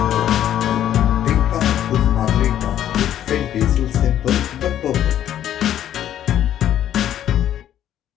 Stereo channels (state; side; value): quieter; right; 11.1 dB